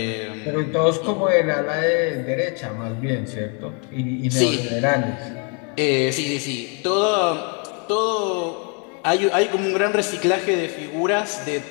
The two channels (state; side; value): quieter; right; 36.6 dB